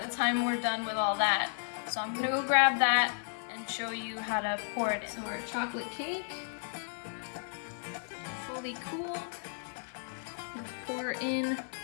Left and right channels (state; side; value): silent; right; 55 dB below the other